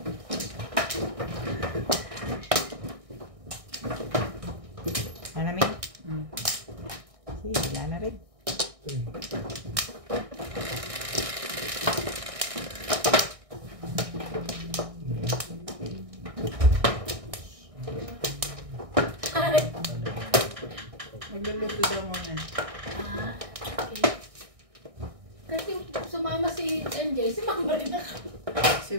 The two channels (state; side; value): late; left; 1.6 ms